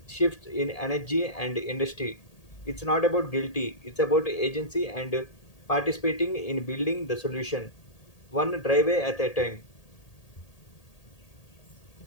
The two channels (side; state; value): right; late; 1.8 ms